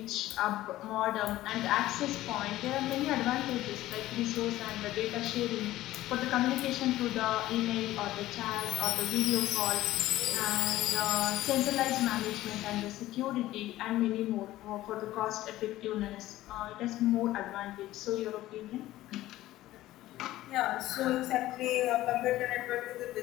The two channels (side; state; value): right; quieter; 15.6 dB